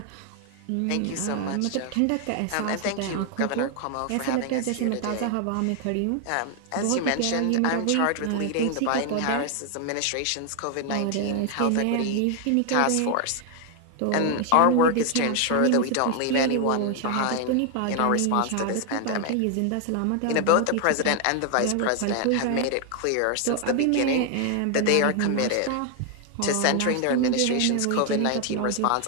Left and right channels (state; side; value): different; both; correlation 0.00